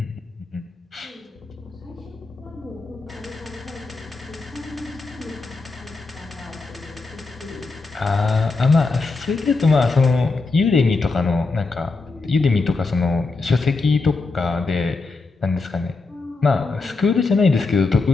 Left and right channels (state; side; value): quieter; right; 3.8 dB